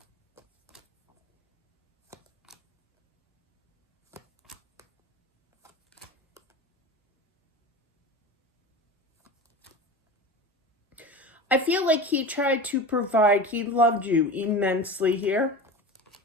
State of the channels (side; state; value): both; normal; correlation 0.30